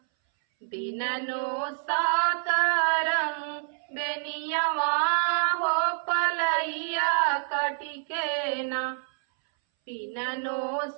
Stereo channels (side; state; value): left; silent; 60 dB below the other